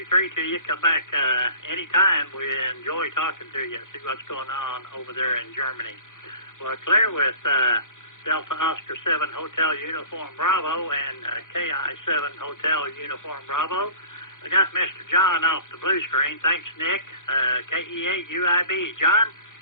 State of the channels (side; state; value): right; late; 0.88 ms